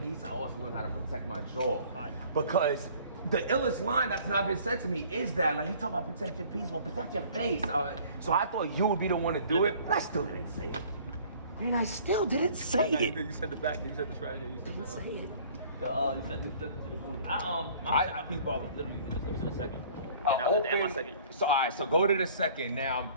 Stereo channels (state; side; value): inverted; both; correlation -0.53